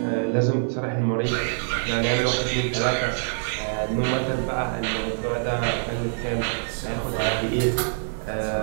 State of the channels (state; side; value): silent; left; digital silence